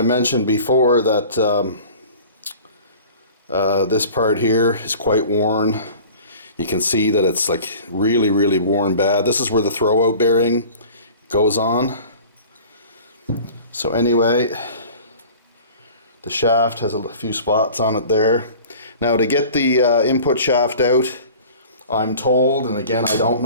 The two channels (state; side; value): inverted; both; correlation -0.43